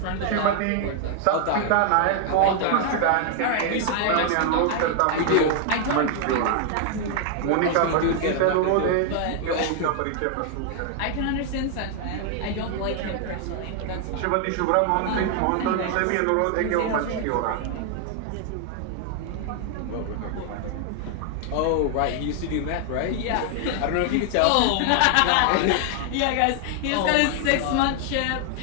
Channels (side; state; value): both; different; correlation 0.00